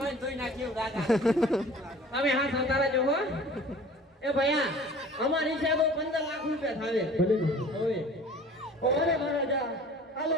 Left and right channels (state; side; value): normal; both; correlation 0.46